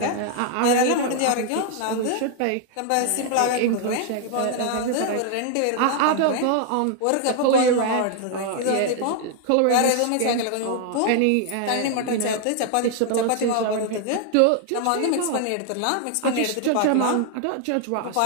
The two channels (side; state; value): both; different; correlation 0.00